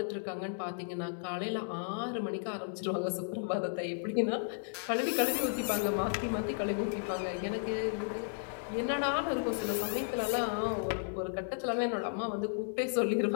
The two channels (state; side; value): silent; right; 55 dB below the other